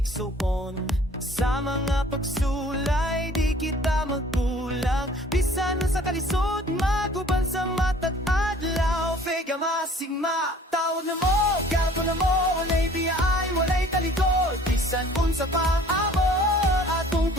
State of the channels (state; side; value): normal; both; correlation 0.52